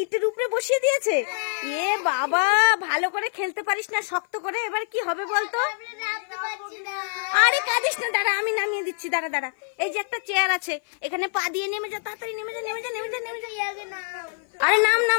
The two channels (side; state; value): right; silent; 55 dB below the other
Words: ইটের উপরে বসিয়ে দিয়েছে। এ বাবা, ভালো করে খেলতে পারিস না, শক্ত করে। এবার কি হবে বলতো? আমরা নামতে পারছি না। আরে কাঁদিস না, দাঁড়া, আমি নামিয়ে দিচ্ছি। দাঁড়া দাঁড়া, এই যে একটা চেয়ার আছে, এখানে পা দিয়ে নেমে যা, তাড়াতাড়ি নেমে যা, নেমে যা, নেমে যা, নেমে যা। আরে নাম